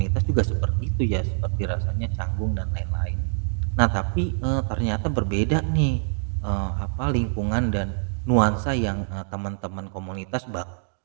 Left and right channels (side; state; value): left; silent; digital silence